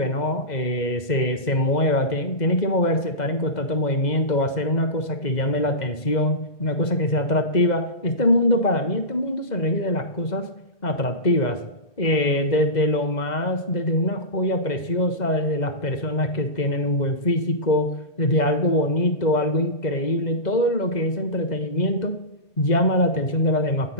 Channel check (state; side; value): late; right; 2.0 ms